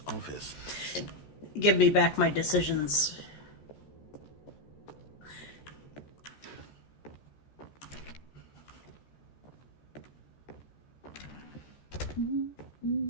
office. Give me back my decisions.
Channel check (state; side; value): late; right; 14 ms